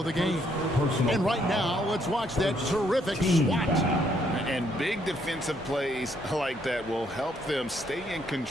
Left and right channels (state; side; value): normal; both; correlation 0.71